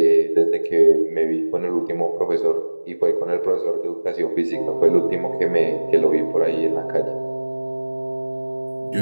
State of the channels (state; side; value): inverted; both; correlation -1.00